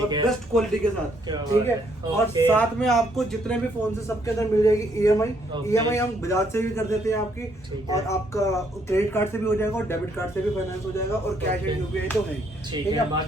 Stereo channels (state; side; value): normal; both; correlation 0.70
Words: बेस्ट क्वालिटी के साथ, ठीक है। और साथ में आपको जितने भी फोन से सबके अंदर मिल जाएगी EMI हम बजाज से भी कर देते हैं आपकी, और आपका क्रेडिट कार्ड से भी हो जाएगा और डेबिट कार्ड से भी फाइनेंस हो जाएगा और कैश एंड UPI तो है, ठीक है।